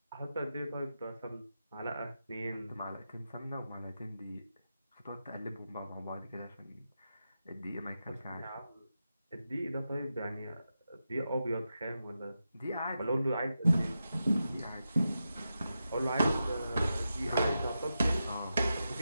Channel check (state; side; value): inverted; both; correlation -0.89